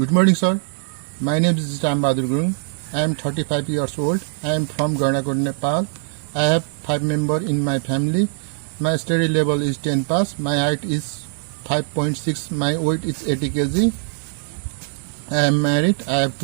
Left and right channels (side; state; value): left; silent; digital silence